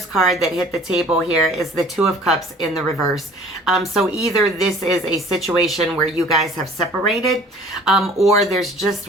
card that hit the table here is the Two of Cups in the reverse. So either this is a situation where you guys have separated, or there's just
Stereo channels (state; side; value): normal; both; correlation 0.50